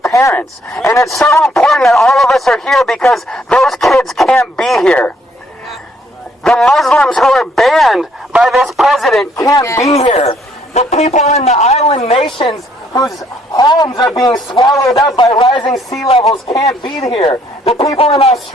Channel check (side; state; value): both; normal; correlation 0.67